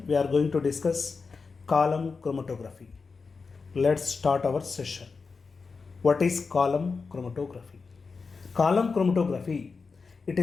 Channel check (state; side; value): quieter; right; 4.7 dB